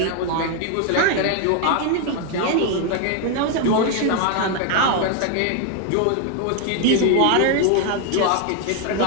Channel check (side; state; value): both; different; correlation 0.01